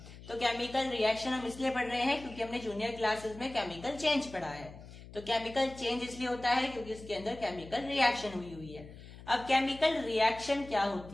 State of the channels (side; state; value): left; noise; hum, 16 dB below the sound